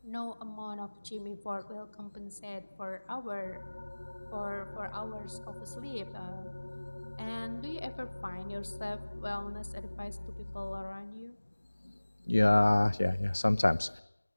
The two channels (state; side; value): inverted; both; correlation -1.00